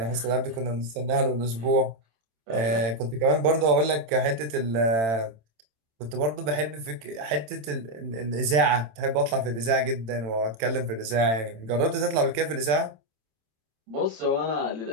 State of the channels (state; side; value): late; left; 27 ms